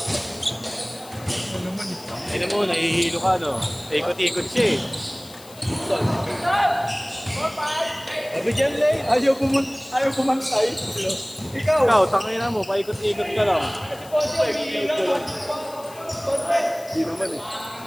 Ano naman eh. Ayun mo, nahihilo ka no? Ikot-ikot siya eh. Sabi dyan, Lay, ayaw pumantay. Ikaw. Ikaw, tangina mo, paikot-ikot ka lang. Hindi naman eh.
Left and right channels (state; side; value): noise; left; hiss, 20 dB below the sound